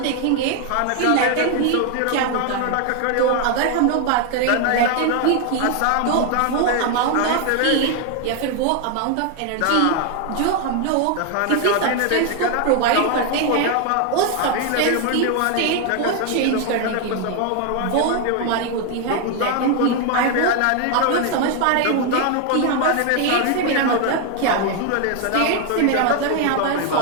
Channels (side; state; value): both; different; correlation 0.01